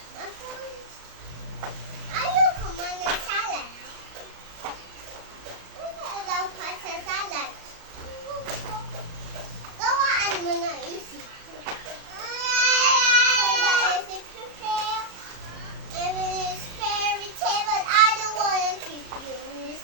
Ayaw kumain ng salad. Ayaw pa sa salad. Gawaan mo na isip. Isip prepare. Even it's fairy tale, but I don't wanna keep you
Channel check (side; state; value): left; late; 37 ms